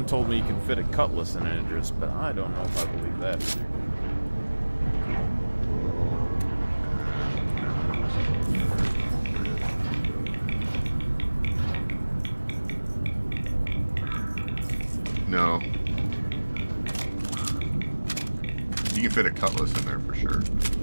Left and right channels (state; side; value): inverted; both; correlation -1.00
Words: told me you can fit a Cutlass in an Idris, but I don't know if I believe that either. No. You can fit a Cutlass in there for sure.